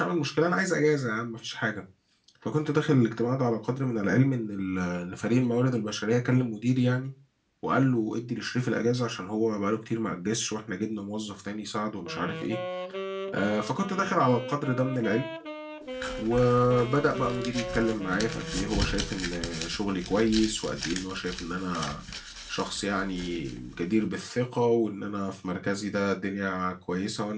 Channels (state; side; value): identical; both; correlation 1.00